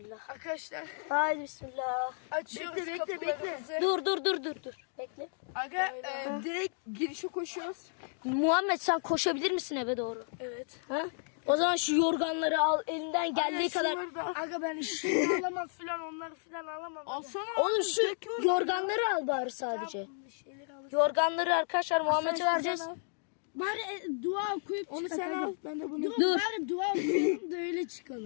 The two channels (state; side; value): silent; right; 56 dB below the other